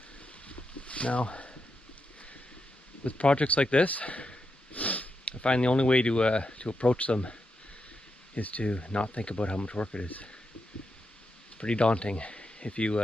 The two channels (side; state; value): both; normal; correlation 0.85